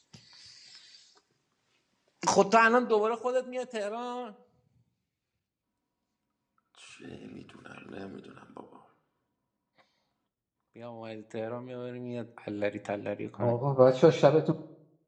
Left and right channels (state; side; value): identical; both; correlation 1.00